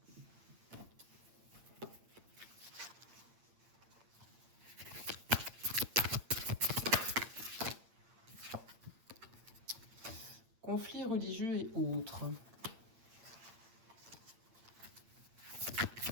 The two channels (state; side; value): late; left; 8.8 ms